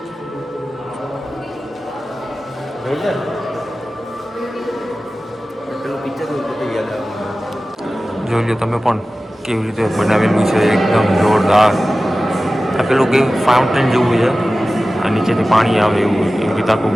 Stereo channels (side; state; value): both; normal; correlation 0.96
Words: પેલું પિક્ચર યાદ આવે. જોઈ લો તમે પણ કેવી રીતે બનાવેલું છે, એકદમ જોરદાર. આ પેલું કેવું ફાઉન્ટેન જેવું છે, આ નીચેથી પાણી આવે એવું. એવી રીતે આખું